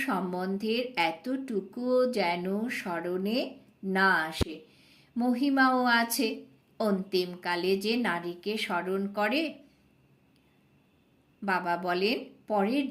সম্বন্ধের এতটুকুও যেন স্মরণে না আসে। মহিমাও আছে। অন্তিমকালে যে নারীকে স্মরণ করে, বাবা বলেন পরের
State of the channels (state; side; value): identical; both; correlation 1.00